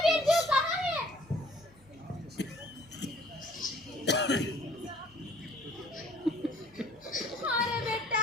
बिरजू, कहाँ है? अरे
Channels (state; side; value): normal; both; correlation 0.55